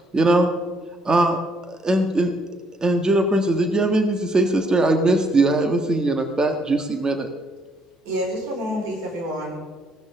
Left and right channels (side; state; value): both; normal; correlation 0.70